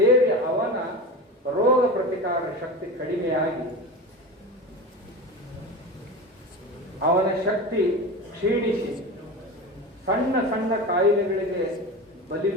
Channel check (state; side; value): normal; both; correlation 0.28